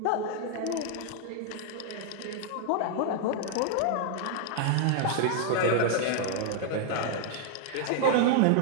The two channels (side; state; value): both; different; correlation 0.00